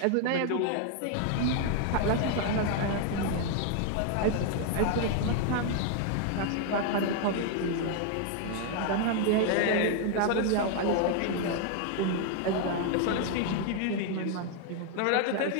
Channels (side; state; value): both; different; correlation 0.00